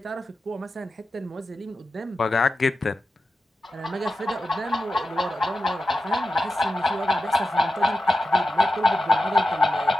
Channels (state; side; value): normal; both; correlation 0.91